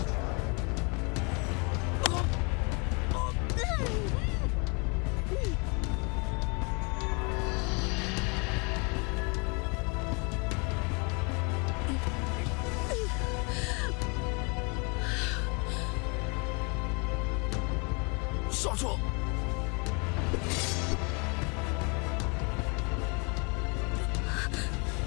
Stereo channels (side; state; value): right; quieter; 32.8 dB